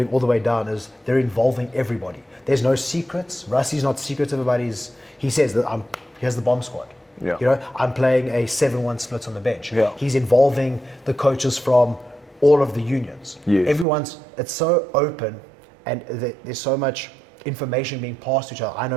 all the way down is they're involving everybody. There's no secrets. Rusty's not secretive about he says that here's the bomb squad. Yeah. You know, I'm playing a 7-1 split on the bench. Yeah. He's involving the coaches from all of the unions. Yes. It's so open and there's so much information being passed to each other. I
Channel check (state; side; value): drops out; left; at 13.9 s